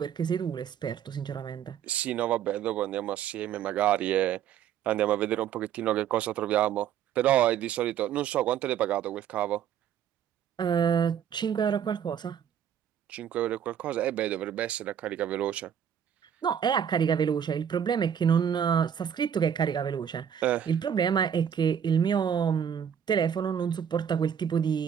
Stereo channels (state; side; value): quieter; left; 8.8 dB